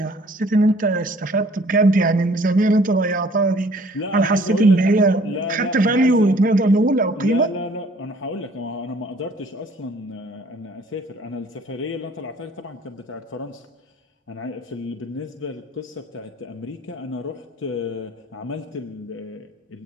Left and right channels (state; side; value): normal; both; correlation 0.56